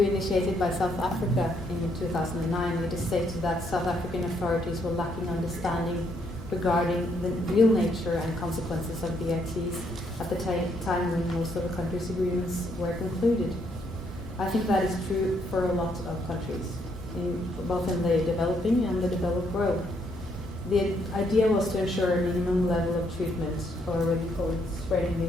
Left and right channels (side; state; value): both; normal; correlation 0.72